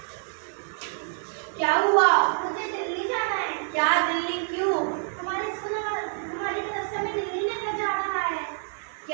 क्या हुआ? मुझे दिल्ली जाना है। क्या दिल्ली क्यों? हमारे तरफ से हमें दिल्ली लेकर जा रहा है।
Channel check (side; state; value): left; silent; 60 dB below the other